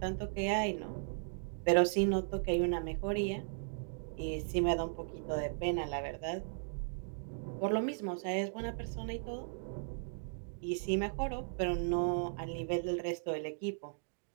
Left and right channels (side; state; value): left; silent; digital silence